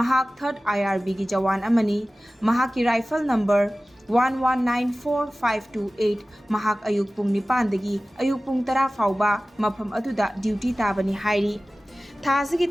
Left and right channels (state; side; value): normal; both; correlation 0.97